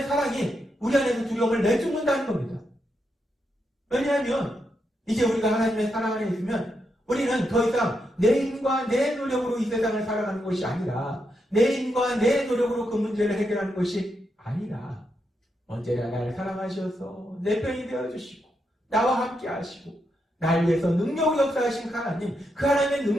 사랑이 우리 안에서 두려움을 내쫓는다는 겁니다. 왜냐하면 이제 우리가 하나님의 사랑 안에 있으면 우리는 더 이상 내 힘과 내 노력으로 이 세상을 살아가는 것이 아니라 내 힘과 내 노력으로 그 문제를 해결하는 것이 아니라 언제나 나를 사랑하셔서 내 편이 되어주시고 나와 함께 하시고 나를 위해서 능력으로 역사하신 하나님 그 하나님의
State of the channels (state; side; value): normal; both; correlation 0.83